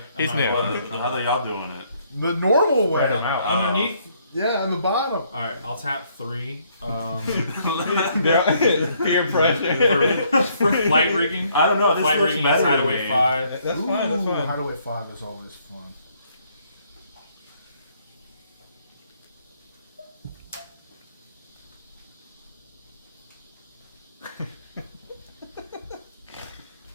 He's I'm new. not Well, how are y'all doing it? The normal way. Spread him out. Underneath. Yeah, on the bottom. Alright, I'll tap 3. Peer pressure. For flight rigging. I don't know. This Flight looks rigging is better to hideaway me. 5. That's fine. That's Ooh, fine. Hideaway 5 is always fun.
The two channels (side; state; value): both; inverted; correlation -0.68